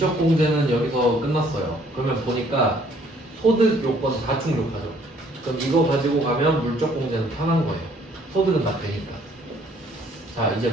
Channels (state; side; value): normal; both; correlation 0.62